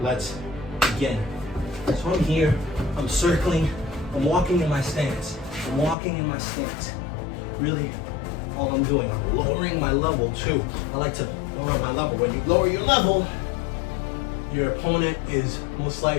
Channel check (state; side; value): drops out; right; at 6.0 s